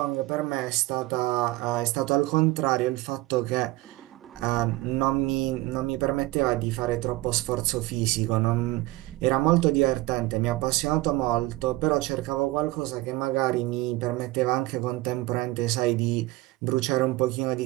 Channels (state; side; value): quieter; left; 19.4 dB